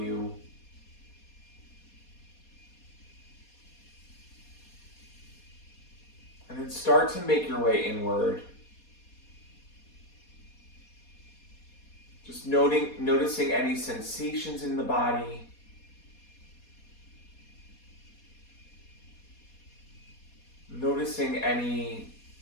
And then start to make your way inward. Just noticing any sensations in the body. Noticing any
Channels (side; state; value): right; late; 4.2 ms